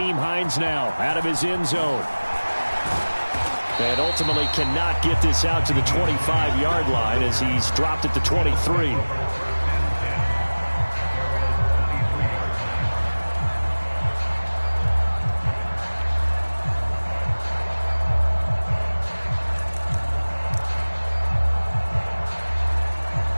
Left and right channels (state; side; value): inverted; both; correlation -1.00